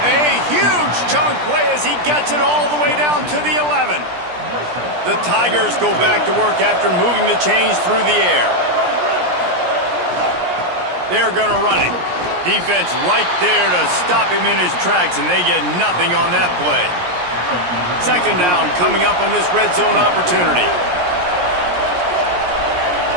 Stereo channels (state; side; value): late; left; 17 ms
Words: A huge chunk play as he gets it all the way down to the 11. The Tigers go back to work after moving the chains through the air. They're going to run it. Defense right there to stop him in his tracks, and they get nothing on that play. 2nd down coming up on this red zone opportunity.